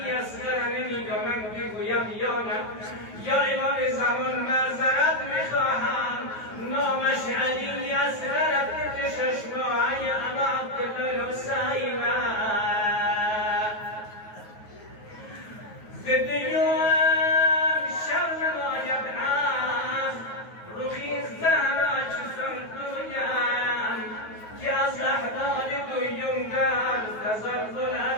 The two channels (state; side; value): late; right; 9.3 ms